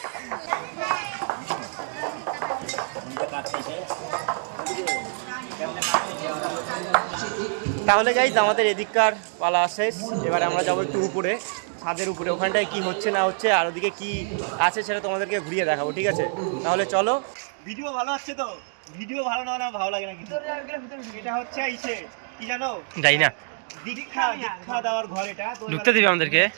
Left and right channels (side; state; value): left; silent; 61 dB below the other